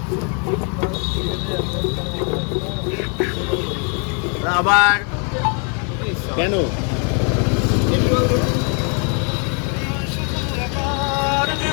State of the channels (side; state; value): right; quieter; 38.6 dB